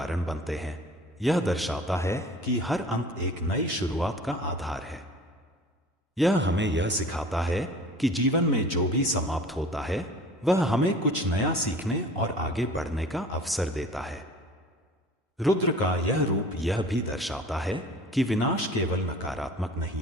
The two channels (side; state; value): both; normal; correlation 0.44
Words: बनते हैं, यह दर्शाता है कि हर अंत एक नई शुरुआत का आधार है। यह हमें यह सिखाता है कि जीवन में जो भी समाप्त होता है, वह हमें कुछ नया सीखने और आगे बढ़ने का अवसर देता है। रुद्र का यह रूप यह भी दर्शाता है कि विनाश केवल नकारात्मक